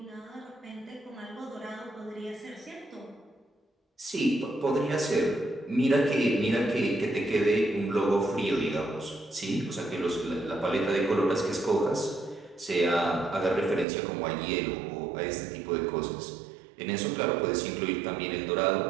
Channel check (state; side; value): drops out; left; at 13.9 s